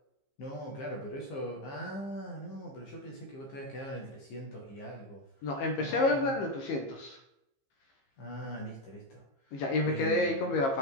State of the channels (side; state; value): right; late; 15 ms